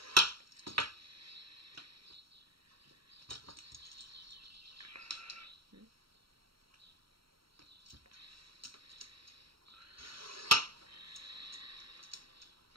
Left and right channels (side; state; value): left; late; 0.75 ms